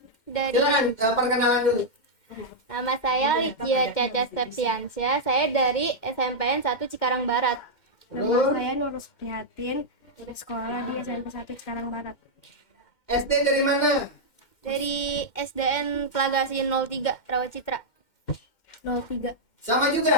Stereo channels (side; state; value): right; late; 2.1 ms